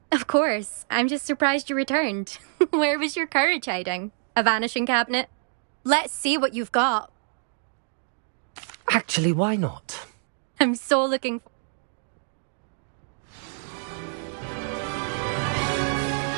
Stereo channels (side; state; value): left; silent; digital silence